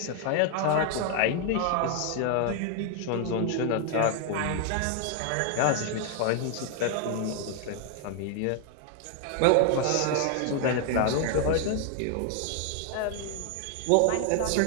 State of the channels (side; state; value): both; different; correlation 0.00